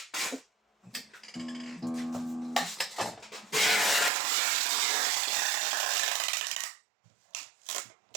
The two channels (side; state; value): left; drops out; at 4.1 s